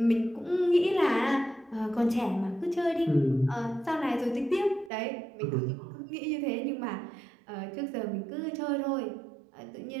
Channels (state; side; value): drops out; left; at 4.9 s